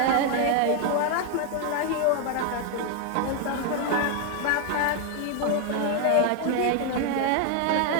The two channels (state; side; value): different; both; correlation 0.00